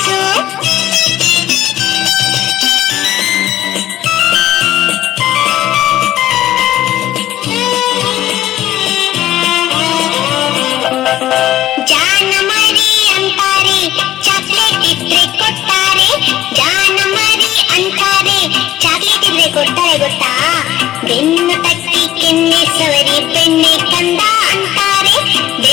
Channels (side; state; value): right; quieter; 13.8 dB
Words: ಜಾನ ಮರಿ ಅಂತಾರೆ, ಚಾಕ್ಲೇಟ್ ಇದ್ರೆ ಕೊಡ್ತಾರೆ. ಜಾನ ಮರಿ ಅಂತಾರೆ, ಚಾಕ್ಲೇಟ್ ಇದ್ರೆ ಕೊಡ್ತಾರೆ ಗೊತ್ತಾ? ಬೆನ್ನು ತಟ್ಟಿ ಕೆನ್ನೆ ಸವರಿ ಬೆಣ್ಣೆ ಕಂದ ಅಂತಾರೆ.